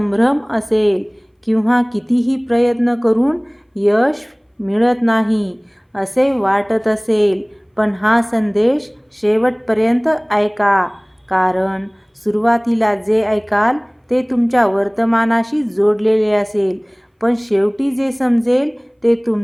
असेल किंवा कितीही प्रयत्न करून यश मिळत नाही असे वाटत असेल. पण हा संदेश शेवटपर्यंत ऐका, कारण सुरुवातीला जे ऐकाल ते तुमच्या वर्तमानाशी जोडलेले असेल, पण शेवटी जे समजेल ते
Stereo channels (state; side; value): identical; both; correlation 1.00